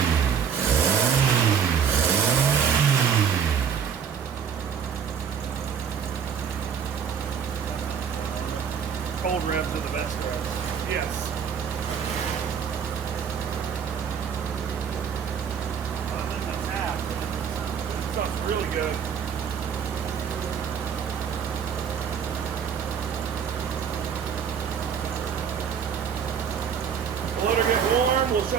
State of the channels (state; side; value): quieter; left; 7.4 dB